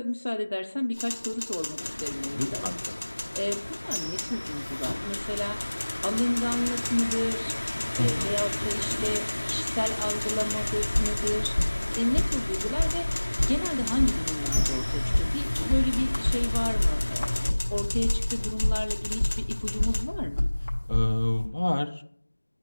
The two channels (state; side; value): inverted; both; correlation -1.00